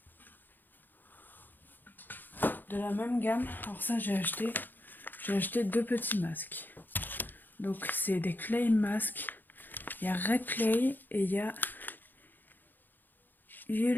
de la même gamme, alors ça j'ai acheté deux petits masques. Donc c'est des clay masks. Il y a Red Clay et il y a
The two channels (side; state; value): right; late; 0.089 ms